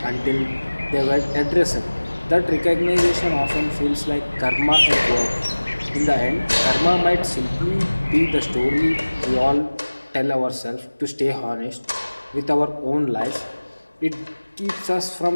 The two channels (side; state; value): both; inverted; correlation -1.00